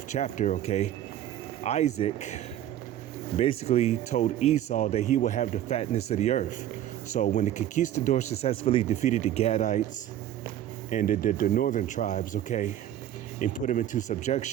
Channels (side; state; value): left; quieter; 11.7 dB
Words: chapter, okay, Isaac basically told Esau that he will have the fatness of the earth. So when the conquistadors successfully defeated the Gadites and the northern tribes, okay, and put them into